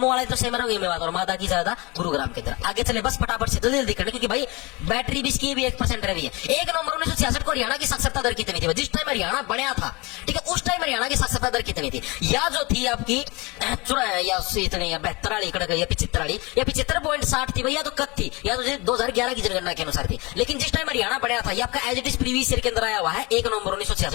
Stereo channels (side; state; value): right; quieter; 25.3 dB